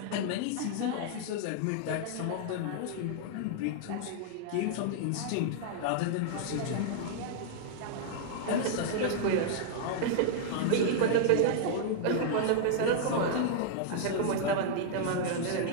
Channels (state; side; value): different; both; correlation -0.01